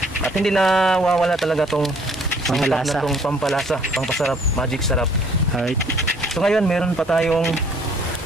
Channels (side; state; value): both; normal; correlation 0.60